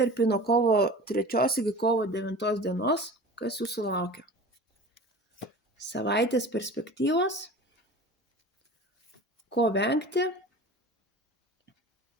nuo kovo 3 iki kovo 9 dienos, kas jūsų laukia. Savaitės perspektyvos, ko vengti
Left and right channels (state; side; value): normal; both; correlation 0.37